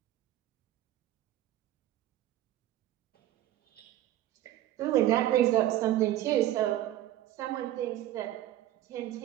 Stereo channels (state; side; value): quieter; left; 13.5 dB